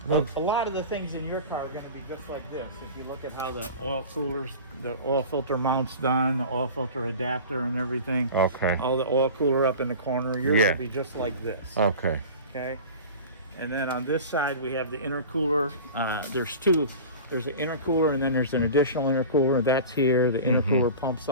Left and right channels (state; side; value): inverted; both; correlation -0.35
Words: A lot of the things in your car are going to be just like this. If you look at how the oil coolers, the oil filter mount's done, the oil filter adapter and everything. Okay. All the oil cooler up in the corner, you're going to be just like this. Okay. Okay. And then on this side, we have the intercooler. There's two. There's an intercooler and then there's an additional intercooler. That's here. The intercooler pumps